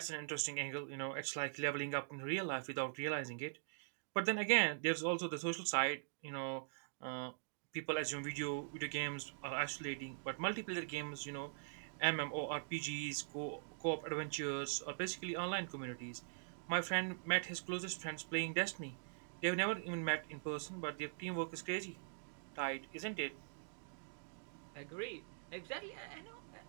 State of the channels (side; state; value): left; silent; digital silence